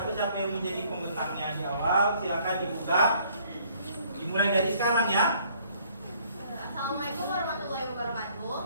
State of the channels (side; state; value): both; inverted; correlation -0.62